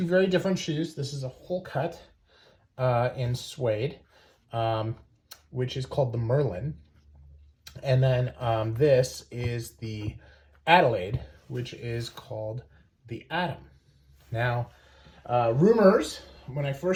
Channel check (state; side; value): identical; both; correlation 1.00